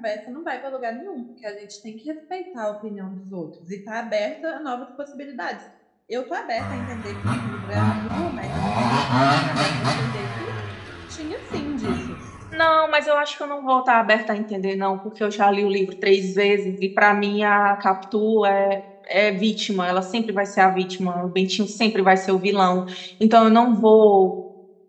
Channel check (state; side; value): identical; both; correlation 1.00